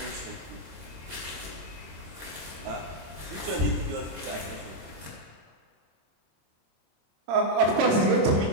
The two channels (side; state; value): left; late; 26 ms